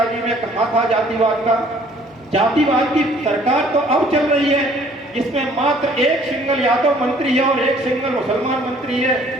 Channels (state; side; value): normal; both; correlation 0.58